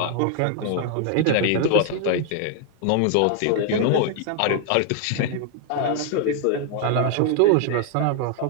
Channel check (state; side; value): different; both; correlation 0.00